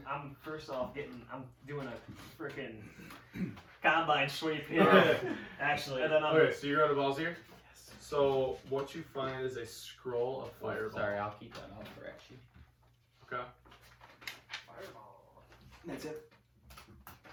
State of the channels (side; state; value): both; identical; correlation 1.00